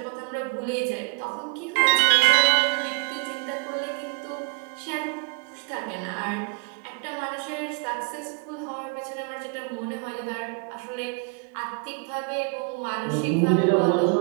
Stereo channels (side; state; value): left; quieter; 34.3 dB